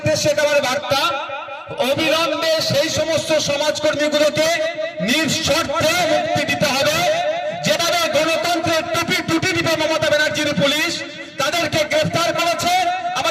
এটা আমার বার্তা, অবিলম্বে সেই সমস্ত সমাজকর্মীগুলোকে নিঃশর্তে মুক্তি দিতে হবে। যেভাবে গণতন্ত্রের টুটি দিবে মমতা ব্যানার্জির পুলিশ, তাদেরকে গ্রেফতার করেছে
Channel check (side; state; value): both; identical; correlation 1.00